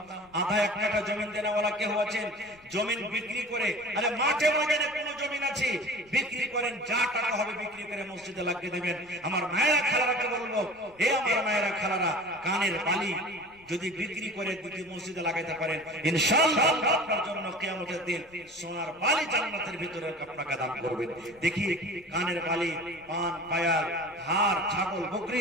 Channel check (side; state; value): left; noise; rumble, 28 dB below the sound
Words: আধা এক কাঠা জমি দেনাওয়ালা কেউ আছেন, জমি বিক্রি করে, আরে মাঠে ময়দানে কোন জমি আছে বিক্রি করেন, যা টাকা হবে বিক্রি করে মসজিদে লাগিয়ে দেবেন। আমার মায়েরা খালারাকে বলবো, এ আমার মায়েরা খালারা, কানের বালি যদি বিক্রি করে দুটি মসজিদে লাগাইতে পারেন ইনশাআল্লাহ আপনার জন্য কিয়ামতের দিন সোনার বালি জান্নাতের ভিতরে আপনাকে দান করবেন। দেখি কানের বালি, পান, পায়াল, হার, ছাগল,